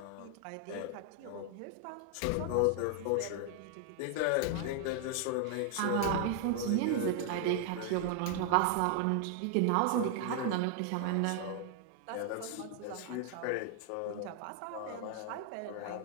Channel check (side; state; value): both; different; correlation 0.00